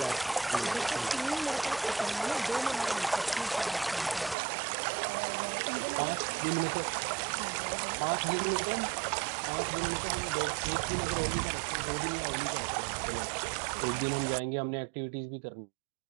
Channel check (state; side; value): drops out; left; at 4.4 s